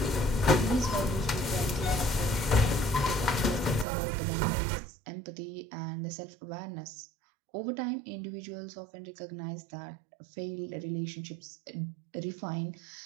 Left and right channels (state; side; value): drops out; left; at 3.9 s